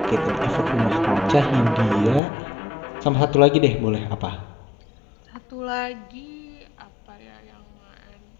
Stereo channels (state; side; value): drops out; right; at 2.2 s